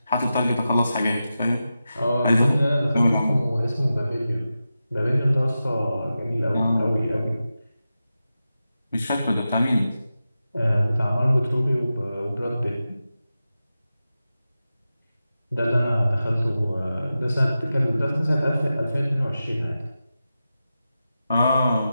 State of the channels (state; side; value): inverted; both; correlation -0.92